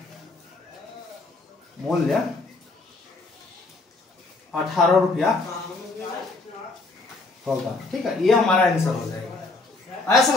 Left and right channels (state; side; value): quieter; right; 3.4 dB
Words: मूल्य 18 रुपया होगा, ठीक है। ये हमारा आंसर हो जाएगा। आया